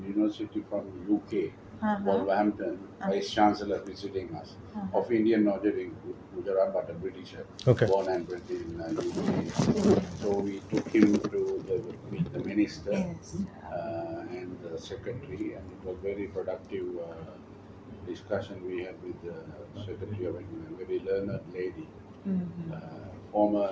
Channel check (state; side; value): identical; both; correlation 1.00